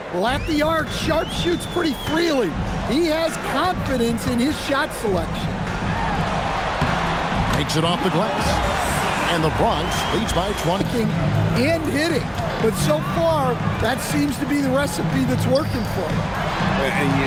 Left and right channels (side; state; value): both; identical; correlation 1.00